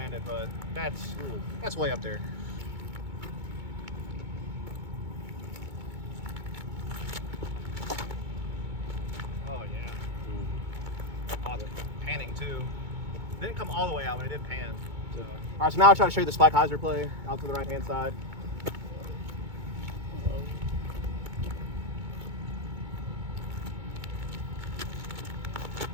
but that's way up there. Oh yeah. Oh, the panning too. Didn't come all the way out, but it did pan. So. All right, so now I'll try to show you the spike hyzer play out to the right hand side.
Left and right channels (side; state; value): left; late; 2.2 ms